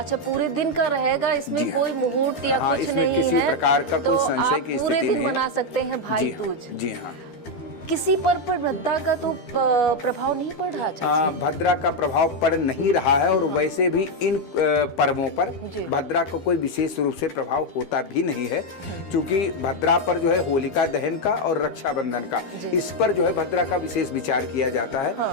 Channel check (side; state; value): right; late; 12 ms